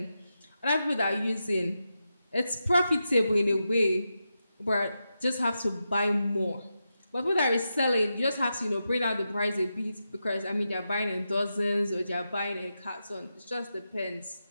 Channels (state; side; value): inverted; both; correlation -0.88